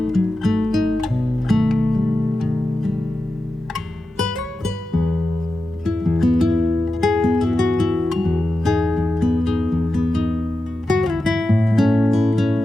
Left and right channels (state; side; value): normal; both; correlation 0.92